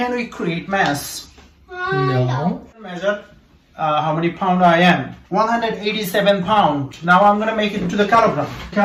we create mass? No. Measure how many pound I am. 187 pound. Now I'm gonna make it to the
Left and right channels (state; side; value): identical; both; correlation 1.00